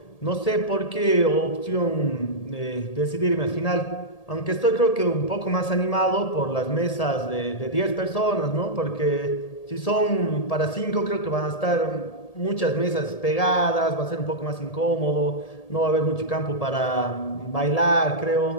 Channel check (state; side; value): late; right; 1.8 ms